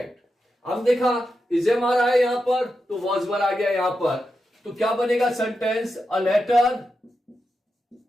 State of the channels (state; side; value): normal; both; correlation 0.88